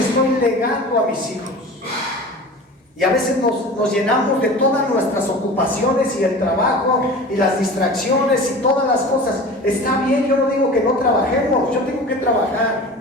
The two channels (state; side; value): normal; both; correlation 0.37